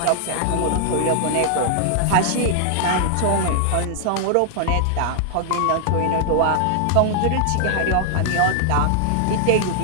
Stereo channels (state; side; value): different; both; correlation -0.01